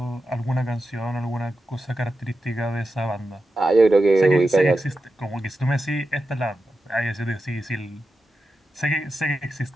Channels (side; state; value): both; normal; correlation 0.90